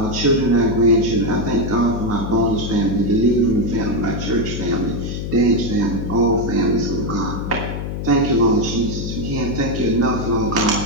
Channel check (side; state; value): left; noise; hum, 5 dB below the sound